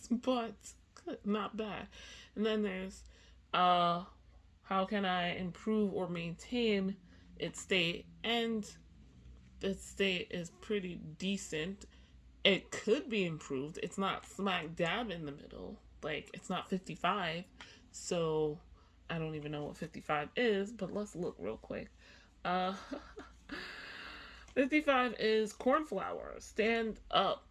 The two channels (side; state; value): both; identical; correlation 1.00